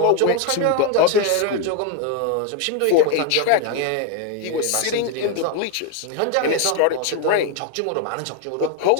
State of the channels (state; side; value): different; both; correlation 0.01